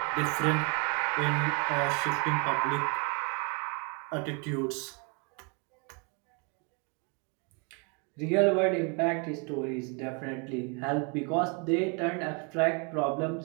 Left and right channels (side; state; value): left; quieter; 34.2 dB